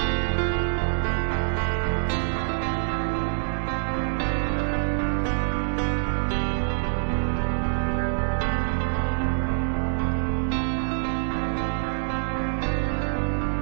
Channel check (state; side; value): silent; left; digital silence